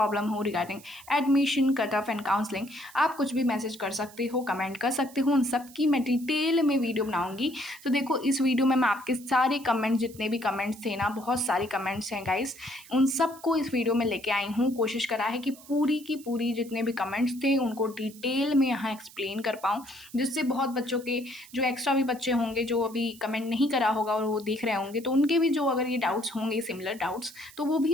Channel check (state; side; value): noise; right; hiss, 20 dB below the sound